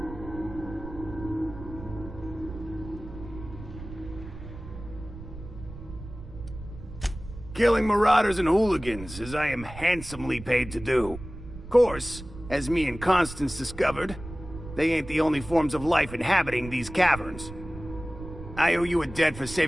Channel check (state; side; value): noise; right; rumble, 13 dB below the sound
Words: Killing marauders and hooligans, as I am handsomely paid to do. Of course, as me and Constance discovered, they ain't the only forms of life inhabiting these caverns. I owe you a debt for